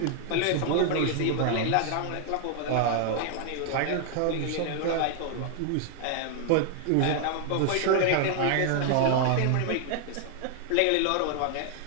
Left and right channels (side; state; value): both; different; correlation 0.00